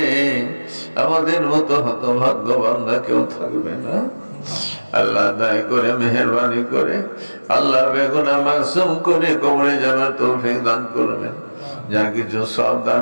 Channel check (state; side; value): inverted; both; correlation -1.00